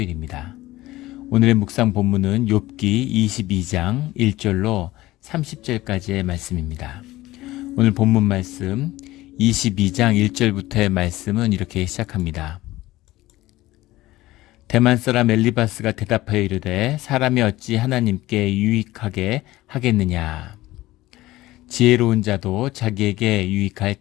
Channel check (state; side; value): quieter; right; 17.4 dB